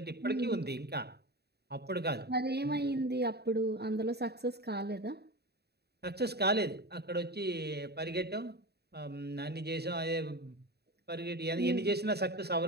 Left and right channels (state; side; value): late; left; 0.47 ms